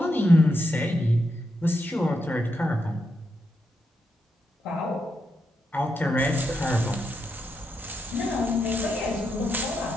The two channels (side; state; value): both; normal; correlation 0.83